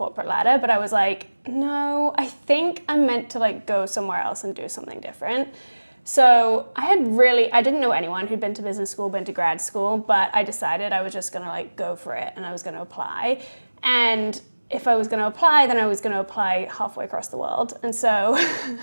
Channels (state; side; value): inverted; both; correlation -1.00